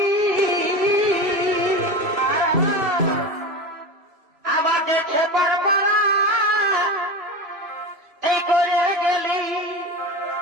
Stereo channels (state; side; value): late; left; 3.0 ms